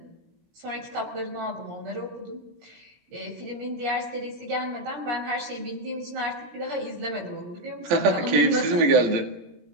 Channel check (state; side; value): late; left; 17 ms